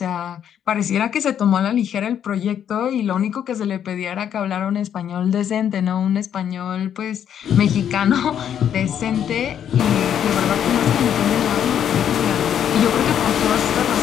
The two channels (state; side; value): quieter; right; 9.3 dB